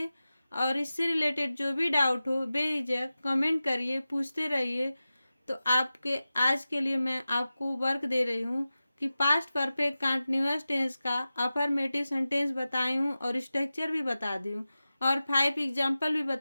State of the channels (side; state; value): both; inverted; correlation -0.95